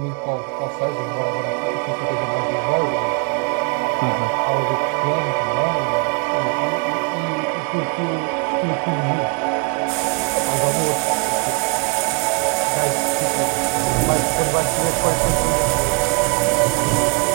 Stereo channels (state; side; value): quieter; left; 33.1 dB